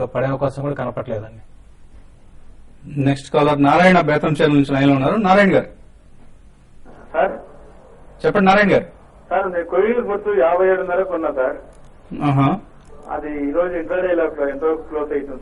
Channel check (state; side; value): identical; both; correlation 1.00